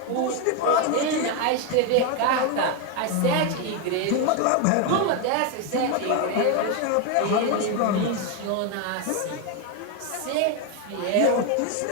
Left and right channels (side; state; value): both; different; correlation 0.01